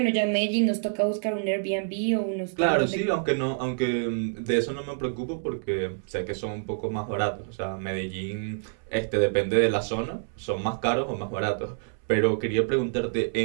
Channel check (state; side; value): silent; left; 60 dB below the other